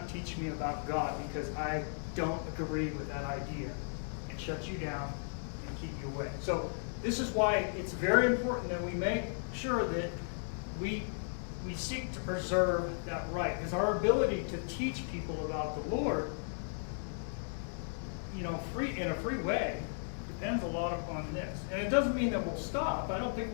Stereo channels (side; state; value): right; silent; digital silence